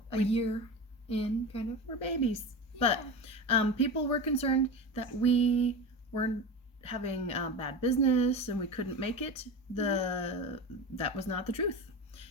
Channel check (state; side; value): normal; both; correlation 0.26